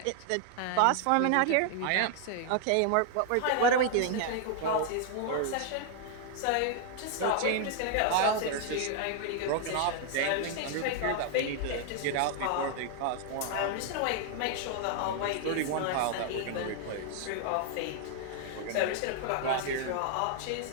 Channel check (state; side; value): different; both; correlation 0.00